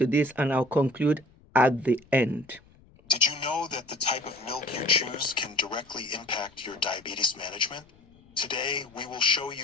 this, and I'll conclude at the end. Did you know that the type of milk you choose can directly impact your diabetes management? Today, we will show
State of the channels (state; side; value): noise; left; rumble, 28 dB below the sound